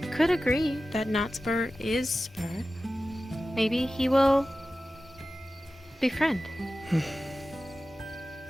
could agree that not Spur is Spur. Maybe he will befriend.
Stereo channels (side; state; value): both; normal; correlation 0.94